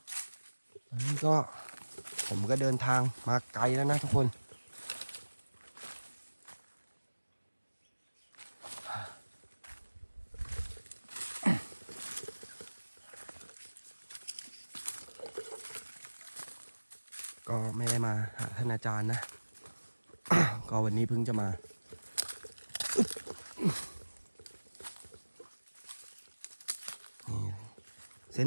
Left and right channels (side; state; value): both; inverted; correlation -1.00